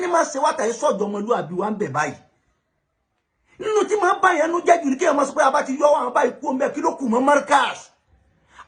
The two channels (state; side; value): identical; both; correlation 1.00